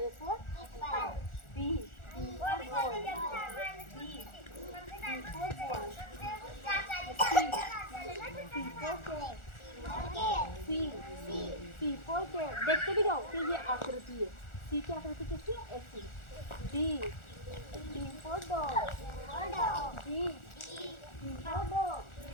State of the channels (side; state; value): right; late; 1.4 ms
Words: for B, B for ball, B for ball, C for cat। देखते भी जाओ कि ये आकृति है। C की आकृति कैसी है? ऐसी। D for dog, D for dog,